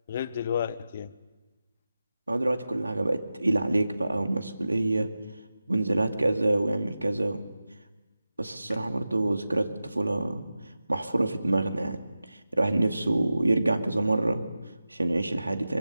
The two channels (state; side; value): inverted; both; correlation -0.93